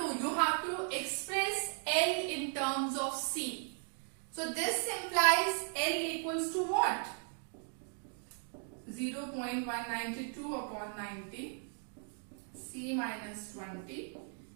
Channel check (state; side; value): silent; left; 53 dB below the other